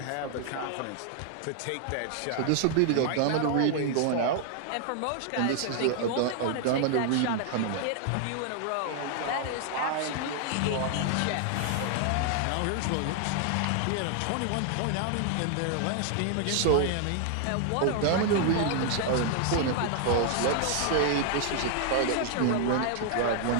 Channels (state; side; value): different; both; correlation 0.00